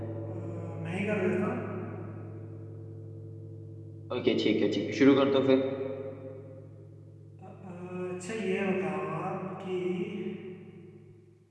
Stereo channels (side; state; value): both; identical; correlation 1.00